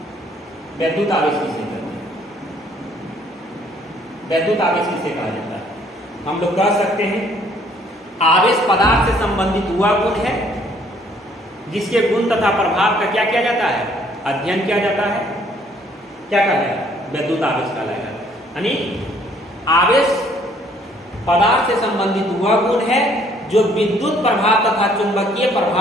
वैद्युत आवेश किसे कहते हैं, वैद्युत आवेश किसे कहा जाता है, हम लोग कह सकते हैं आवेश पदार्थ से संबंधित हुआ गुण है जिसके गुण तथा प्रभाव का क्या किया जाता है, अध्ययन किया जाता है, क्या कहलाएगा, वैद्युत आवेश कहलाएगा। यानी आवेश पदार्थ से संबंधित हुआ गुण है जो विद्युत प्रभाव तथा चुंबकीय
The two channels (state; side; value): normal; both; correlation 0.62